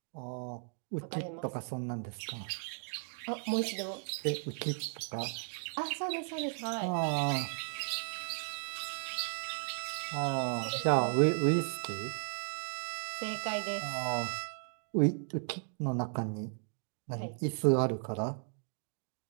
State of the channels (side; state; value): left; silent; 54 dB below the other